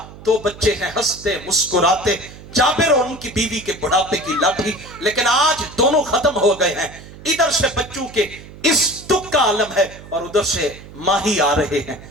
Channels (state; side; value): noise; right; hum, 17 dB below the sound